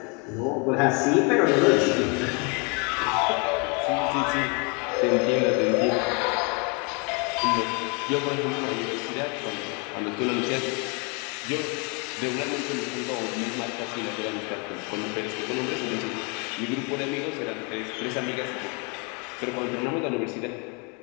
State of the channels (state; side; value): quieter; right; 32.2 dB